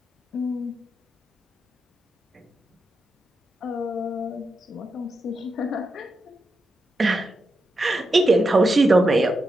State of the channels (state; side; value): normal; both; correlation 0.86